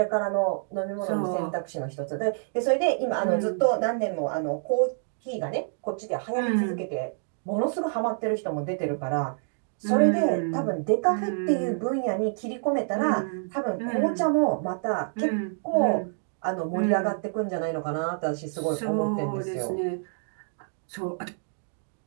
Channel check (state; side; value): silent; left; digital silence